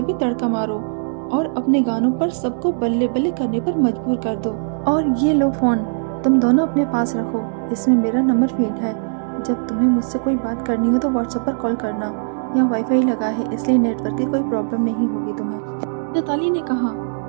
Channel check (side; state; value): left; silent; digital silence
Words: तड़का मारो और अपने गानों पर सबको बल्ले बल्ले करने पर मजबूर कर दो। और ये लो फोन, तुम दोनों अपने पास रखो, इसमें मेरा नंबर फीड है। जब तुम्हें मुझसे कोई बात करनी हो तो व्हाट्सएप पर कॉल करना। यहाँ वाईफाई लगा है, इसलिए नेटवर्क की कोई प्रॉब्लम नहीं होगी तुम्हें। नैताली ने कहा,